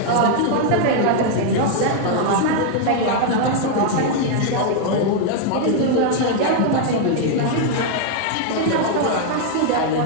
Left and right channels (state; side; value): different; both; correlation 0.00